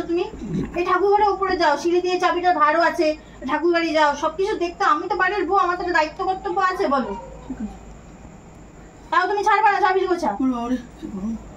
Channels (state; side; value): identical; both; correlation 1.00